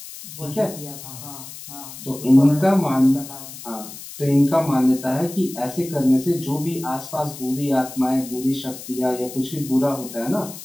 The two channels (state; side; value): noise; left; hiss, 13 dB below the sound